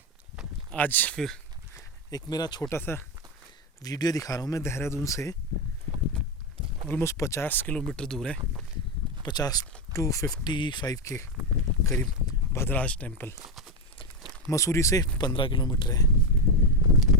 आज फिर एक मेरा छोटा सा वीडियो दिखा रहा हूँ। मैं देहरादून से ऑलमोस्ट 50 किलोमीटर दूर है, 50 to 55 के करीब भद्राज टेम्पल। मसूरी से 15 किलोमीटर है।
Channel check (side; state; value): both; normal; correlation 0.12